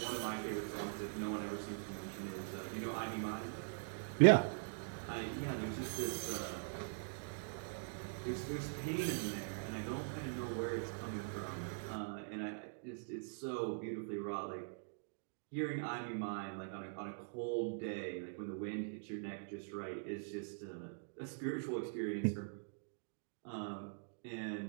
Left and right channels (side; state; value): left; silent; digital silence